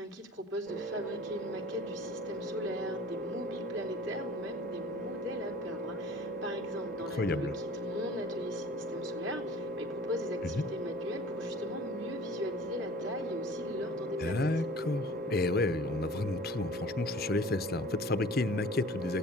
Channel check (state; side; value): normal; both; correlation 0.45